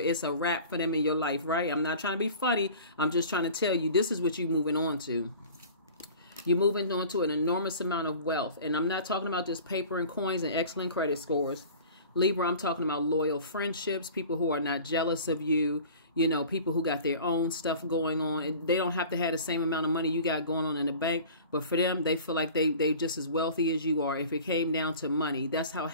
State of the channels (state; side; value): inverted; both; correlation -0.43